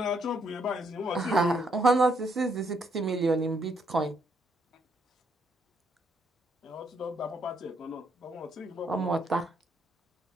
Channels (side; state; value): both; normal; correlation 0.73